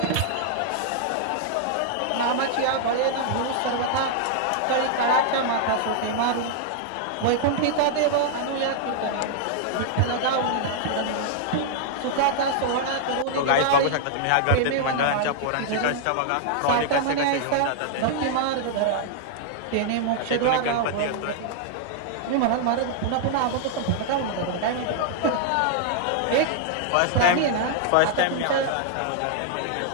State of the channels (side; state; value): both; different; correlation -0.01